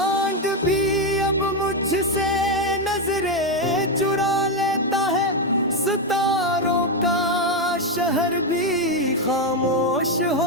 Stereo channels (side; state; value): both; normal; correlation 0.07